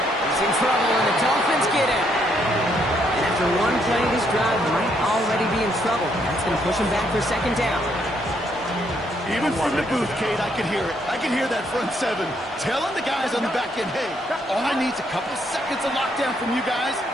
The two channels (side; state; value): both; normal; correlation 0.72